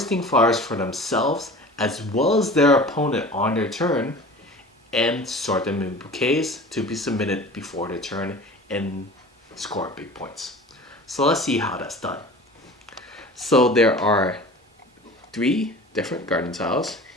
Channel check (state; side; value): normal; both; correlation 0.39